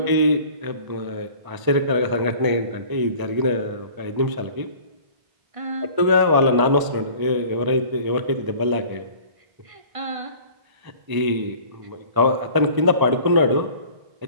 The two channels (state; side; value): late; left; 1.0 ms